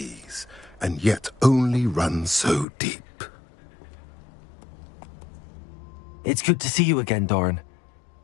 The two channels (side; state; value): right; drops out; at 2.7 s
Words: and yet only run so deep. It's good to see you again, Doran.